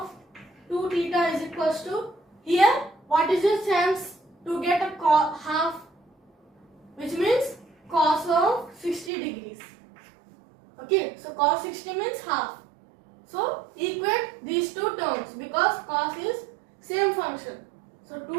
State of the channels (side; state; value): left; drops out; at 9.1 s